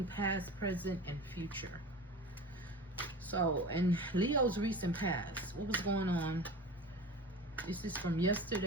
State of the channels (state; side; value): normal; both; correlation 0.34